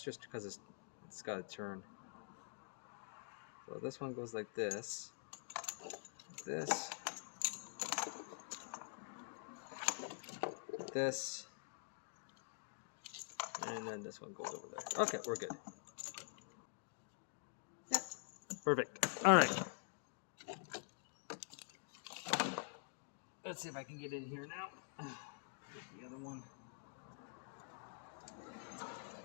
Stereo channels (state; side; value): quieter; right; 39.8 dB